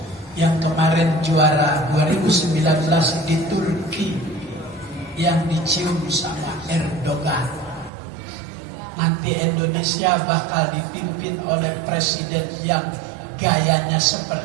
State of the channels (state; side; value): drops out; left; at 7.9 s